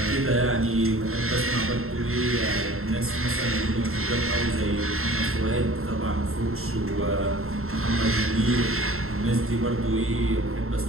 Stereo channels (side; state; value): left; late; 0.62 ms